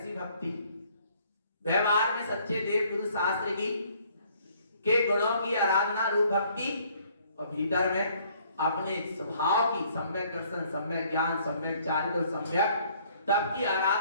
भक्ति व्यवहार में सच्चे देव गुरु शास्त्र की के गुणों की आराधना रूप भक्ति, और भीतर में अपने स्वभाव की सम्यक दर्शन, सम्यक ज्ञान, सम्यक चारित्र, सम्यक तब की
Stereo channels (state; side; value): inverted; both; correlation -0.62